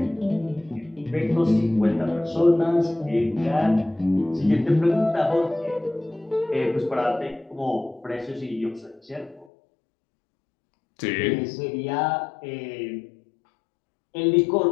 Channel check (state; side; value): drops out; right; at 9.5 s